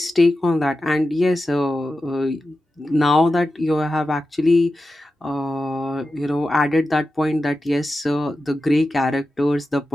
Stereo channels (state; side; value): normal; both; correlation 0.92